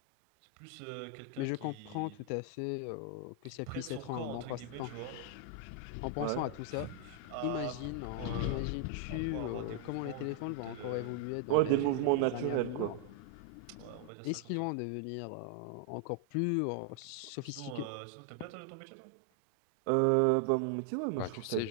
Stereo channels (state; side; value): different; both; correlation 0.00